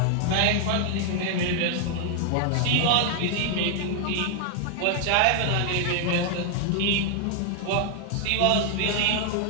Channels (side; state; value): both; different; correlation 0.00